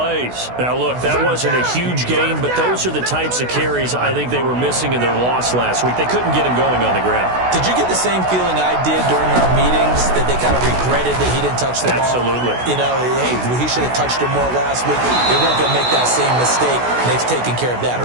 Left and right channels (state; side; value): late; left; 16 ms